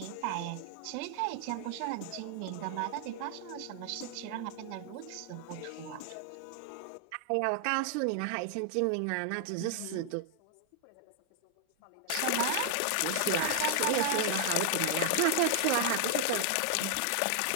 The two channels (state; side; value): different; both; correlation 0.00